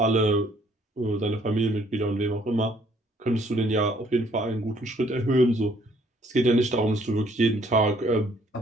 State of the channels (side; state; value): both; normal; correlation 0.63